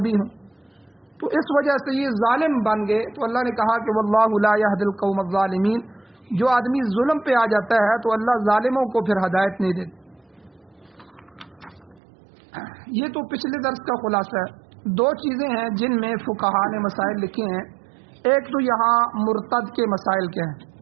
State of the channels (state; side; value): drops out; left; at 12.0 s